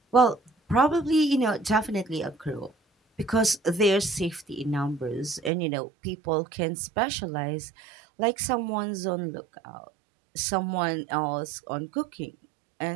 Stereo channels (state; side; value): drops out; left; at 5.5 s